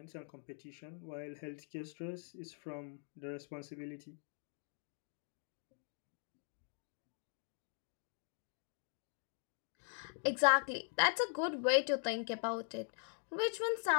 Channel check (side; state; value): right; silent; 50 dB below the other